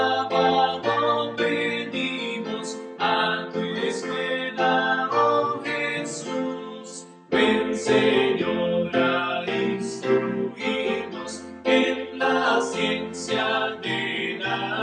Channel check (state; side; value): identical; both; correlation 1.00